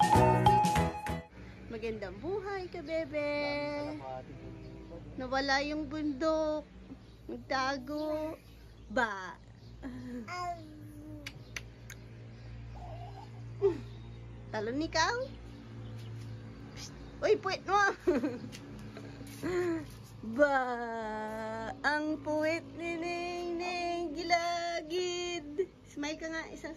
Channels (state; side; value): identical; both; correlation 1.00